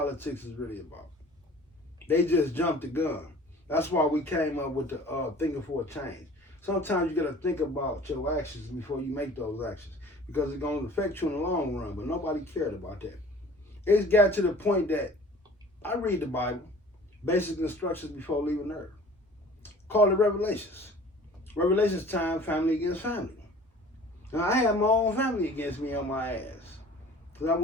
is really about. They just jumped the gun. That's why we came up with the thinking for a change. Sometimes you got to think about your actions before you make those actions because it's going to affect you in the long run, but nobody cared about that. It's got to the point that I read the Bible, basic instructions before leaving Earth. Call it Revelations. Revelations time, family against family. Now, I had my own family against me on my ass because I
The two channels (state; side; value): normal; both; correlation 0.46